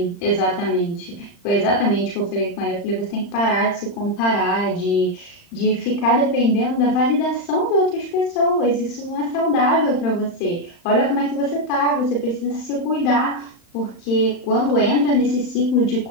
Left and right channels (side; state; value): right; late; 35 ms